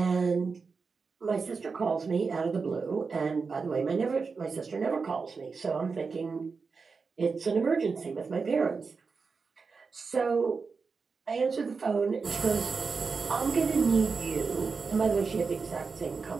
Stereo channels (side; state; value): left; quieter; 4.9 dB